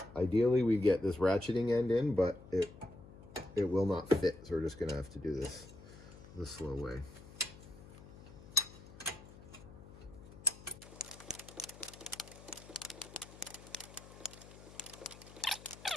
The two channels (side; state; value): left; noise; hum, 18 dB below the sound